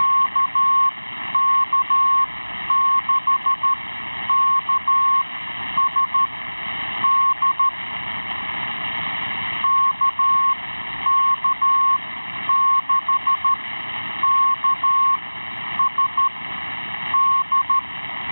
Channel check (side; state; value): both; inverted; correlation -1.00